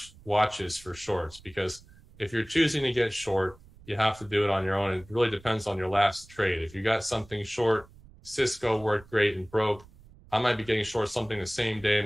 watches for shorts, because if you're choosing to get short, you have to do it on your own. It really depends on your last trade. If you got something short, Cisco worked great and broke, I might be getting short something the same day,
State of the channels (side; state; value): right; noise; rumble, 24 dB below the sound